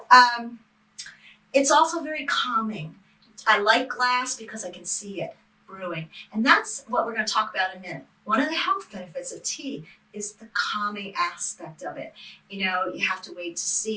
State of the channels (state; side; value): identical; both; correlation 1.00